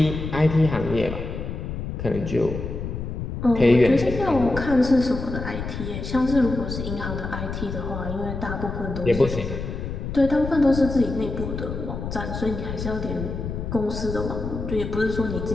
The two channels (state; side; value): noise; left; rumble, 6 dB below the sound